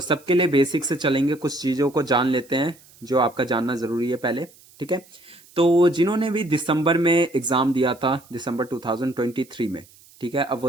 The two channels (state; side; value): noise; right; hiss, 26 dB below the sound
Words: सबके लिए बेसिक से चलेंगे, कुछ चीज़ों को जान लेते हैं जो आपका जानना ज़रूरी है पहले। ठीक है, तो जिन्होंने भी दिसंबर में एग्ज़ाम दिया था, दिसंबर 2023 में, ठीक है, अब